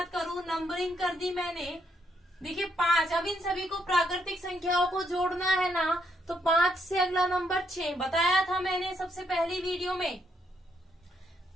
करूं, नंबरिंग कर दी मैंने, देखिए 5। अब इन सभी को प्राकृतिक संख्याओं को जोड़ना है ना, तो 5 से अगला नंबर 6 बताया था मैंने सबसे पहली वीडियो में।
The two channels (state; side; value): normal; both; correlation 0.75